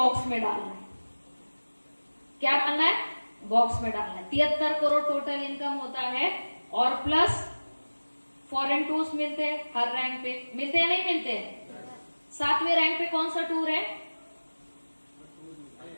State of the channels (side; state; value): both; inverted; correlation -1.00